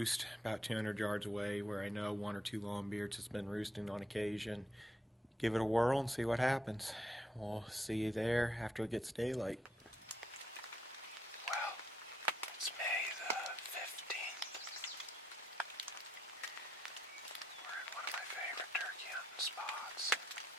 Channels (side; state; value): both; normal; correlation 0.77